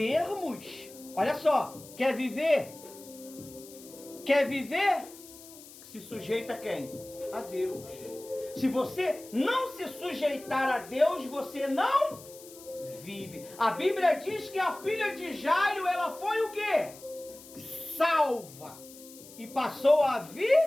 Olha só, quer viver? Quer viver? Se sujeita a quem? A Deus. Se você não se sujeitar a Deus, você não vive. A Bíblia diz que a filha de Jairo, ela foi o quê? Salva. E passou a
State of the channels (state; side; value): noise; left; hiss, 19 dB below the sound